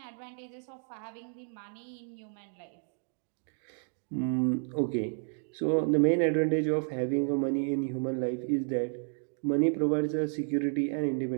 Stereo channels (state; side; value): silent; left; 56 dB below the other